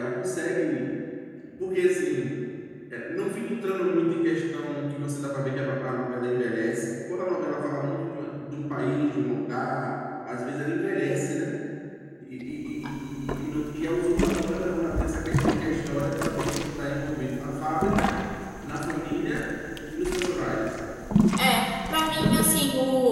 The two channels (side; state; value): both; identical; correlation 1.00